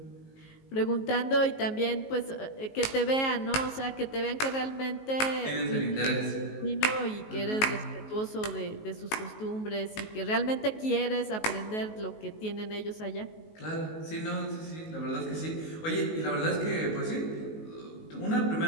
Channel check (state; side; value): late; right; 19 ms